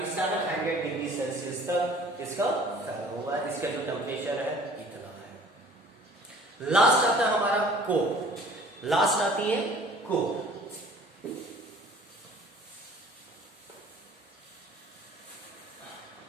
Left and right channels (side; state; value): both; normal; correlation 0.50